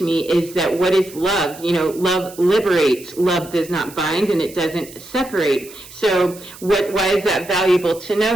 me is that what is love? Love liberates, love does not bind, and it doesn't separate. So why is that valuable to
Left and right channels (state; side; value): noise; right; hiss, 18 dB below the sound